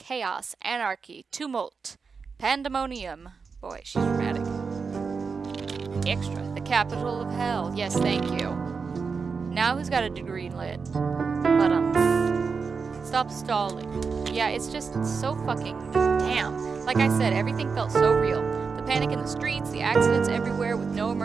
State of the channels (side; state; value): left; quieter; 5.2 dB